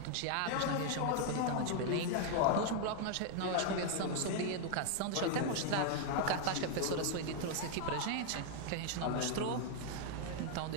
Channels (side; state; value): both; different; correlation 0.00